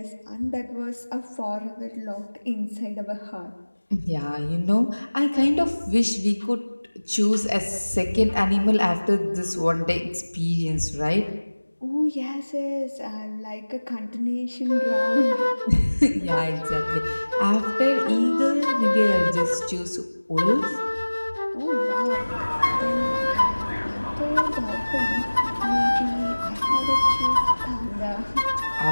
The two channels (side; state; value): both; inverted; correlation -1.00